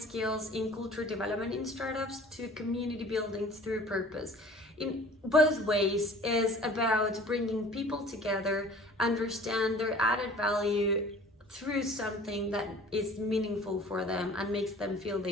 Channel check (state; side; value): normal; both; correlation 0.47